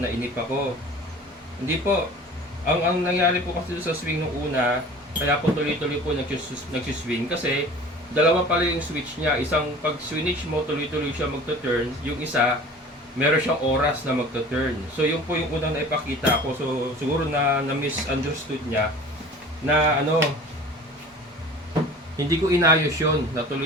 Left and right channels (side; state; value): both; normal; correlation 0.43